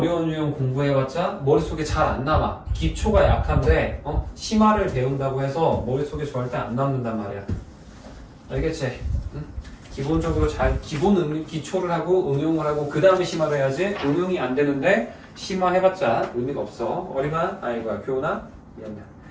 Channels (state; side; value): identical; both; correlation 1.00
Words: 유형 공부해봤자 머릿속에 잘 안 남아. 기초가 약한데 심화를 배운다고 해서 머릿속에 절대 안 남는단 말이야. 알겠지? 응? 기본적으로 잘 기초를 하고 응용을 하고 그 다음에 심화를 해야지. 응용이 안 되는데 심화해봤자 의미가 없어. 어리만 아이고야 교훈아 미안해.